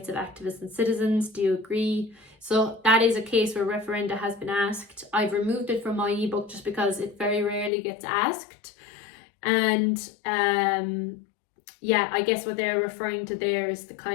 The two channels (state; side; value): drops out; right; at 7.7 s